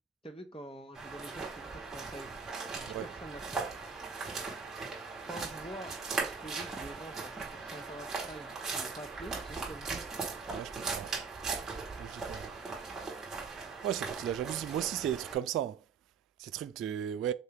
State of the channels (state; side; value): quieter; left; 5.8 dB